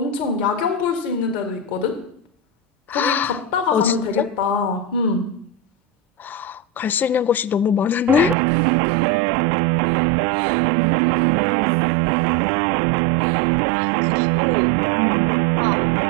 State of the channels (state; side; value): drops out; left; at 8.3 s